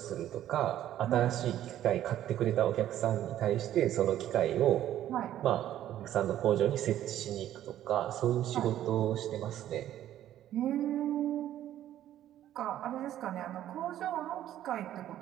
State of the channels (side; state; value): left; quieter; 12.2 dB